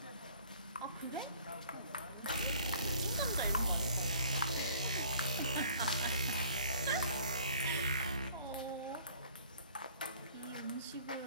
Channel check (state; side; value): inverted; both; correlation -0.53